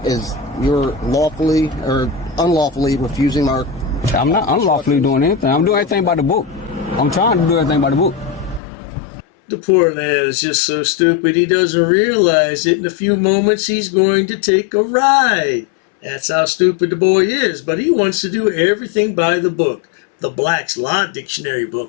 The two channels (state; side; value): drops out; right; at 8.6 s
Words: as you're lawfully or unlawfully refusing our... I'm not unlawfully doing anything. I'm doing everything by the book. I'm trying to do everything by the book. The poor lad is just so stupid he doesn't realize that in a few moments he's going to take a ride. That's how stupid the boy is, but he wants to do everything by the book. The Black's Law Dictionary